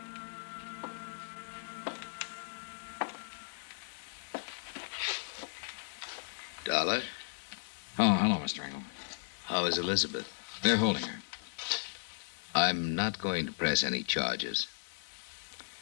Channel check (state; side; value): silent; right; digital silence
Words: Dollar, Oh, hello, Mr. Engel. how is Elizabeth? They're holding her. I'm not going to press any charges.